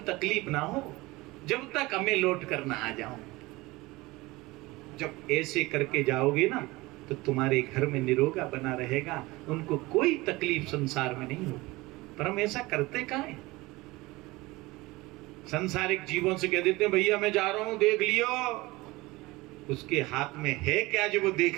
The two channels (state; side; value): quieter; left; 21.4 dB